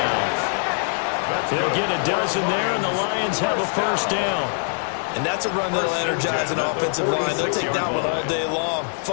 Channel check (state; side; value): silent; right; 63 dB below the other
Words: They'll get a dozen there, and the Lions have a first down. And that's a run that'll energize an offensive line. They'll take that one all day long.